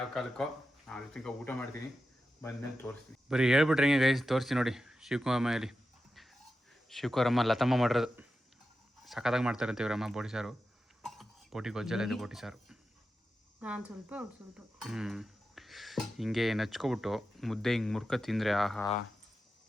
ಕಾಲಕ್ಕೋ ಅದು ತಿನ್ಕೊ ಊಟ ಮಾಡ್ತೀನಿ, ಬಂದ್ಮೇಲೆ ತೋರಿಸ್ತೀನಿ. ಬರೀ ಹೇಳ್ಬಿಟ್ರೆ ಹೆಂಗೆ ಗೈಸ್, ತೋರಿಸ್ತೀನಿ ನೋಡಿ. ಶಿವಕುಮಾರಲ್ಲಿ ಶಿವಕುಮಾರಮ್ಮ ಲತಮ್ಮ ಮಾಡಿರೋದು ಸಖತ್ತಾಗಿ ಮಾಡ್ತಾರಂತೆ ಇವರಮ್ಮ. ಬೋಟಿ ಸಾರು, ಬೋಟಿ ಗೊಜ್ಜೆಲ್ಲ ಇದೆ, ಬೋಟಿ ಸಾರು. ನಾನು ಸ್ವಲ್ಪ ಹಿಂಗೆ ನಚ್ಕೊಬಿಟ್ಟು ಮುದ್ದೆ ಹಿಂಗೆ ಮುರ್ಕ ತಿಂದರೆ ಆಹಾ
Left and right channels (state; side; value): normal; both; correlation 0.91